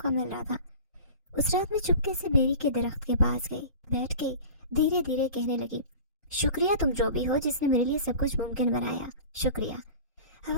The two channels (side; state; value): both; inverted; correlation -0.38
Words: मिल रहा था। उस रात में चुपके से बेरी के दरख्त के पास गई, बैठ गई, धीरे धीरे कहने लगी, शुक्रिया तुम जो भी हो जिसने मेरे लिए सब कुछ मुमकिन बनाया, शुक्रिया।